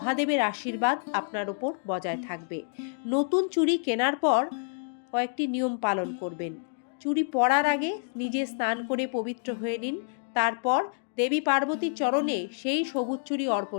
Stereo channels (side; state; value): right; silent; digital silence